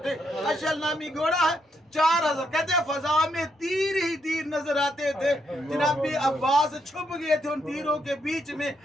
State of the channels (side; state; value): both; normal; correlation 0.77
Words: थे, अशल नामी घोड़ा है। 4000 कहते हैं फजा में तीर ही तीर नजर आते थे। जनाब अब्बास छुप गए थे उन तीरों के बीच में,